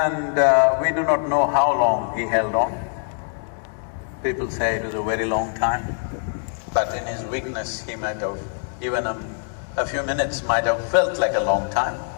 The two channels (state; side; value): silent; right; 63 dB below the other